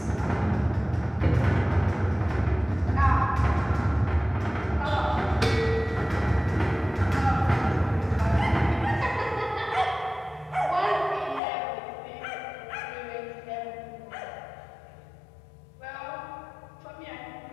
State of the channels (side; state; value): right; drops out; at 11.4 s